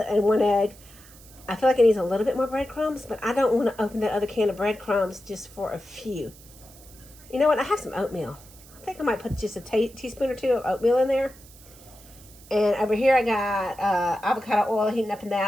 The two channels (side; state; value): right; noise; hiss, 22 dB below the sound